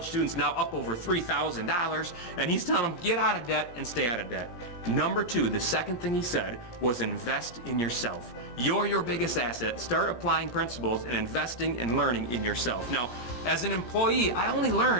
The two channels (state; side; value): late; right; 17 ms